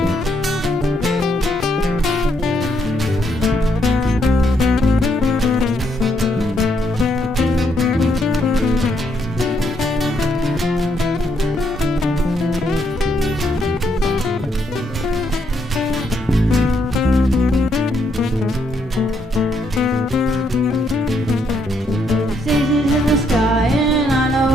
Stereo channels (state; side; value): normal; both; correlation 0.74